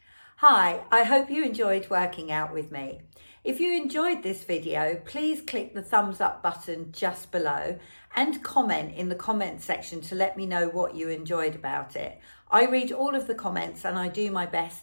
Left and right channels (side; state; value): both; inverted; correlation -1.00